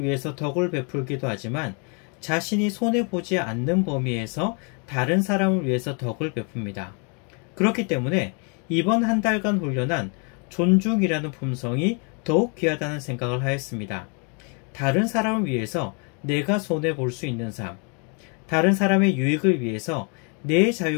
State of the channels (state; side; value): quieter; right; 36.8 dB